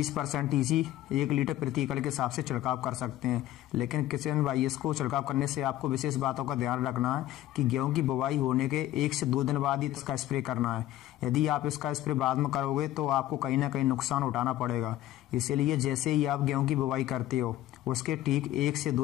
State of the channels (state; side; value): quieter; right; 13.9 dB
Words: EC 1 लीटर प्रति एकड़ के हिसाब से छिड़काव कर सकते हैं। लेकिन किसान भाई, इसको छिड़काव करने से आपको विशेष बातों का ध्यान रखना है कि गेहूं की बुवाई होने के 1 से 2 दिन बाद ही इसका स्प्रे करना है। यदि आप इसका स्प्रे बाद में करोगे तो आपको कहीं ना कहीं नुकसान उठाना पड़ेगा। इसीलिए जैसे ही आप गेहूं की बुवाई करते हो उसके ठीक 1 से